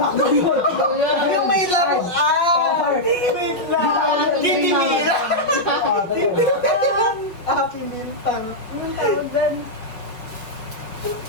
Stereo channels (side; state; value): right; late; 5.6 ms